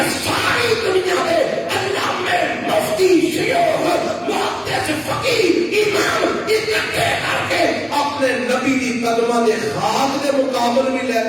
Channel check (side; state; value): both; identical; correlation 1.00